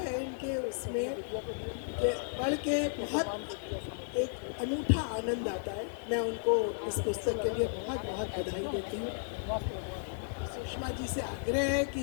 इनके उसमें कि पढ़ के बहुत एक अनूठा आनंद आता है। मैं उनको इस पुस्तक के लिए बहुत बहुत बधाई देती हूँ। सुषमा जी से आग्रह है कि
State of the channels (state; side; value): silent; right; digital silence